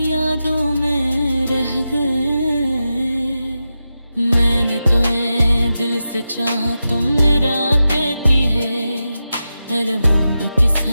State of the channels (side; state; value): both; inverted; correlation -0.91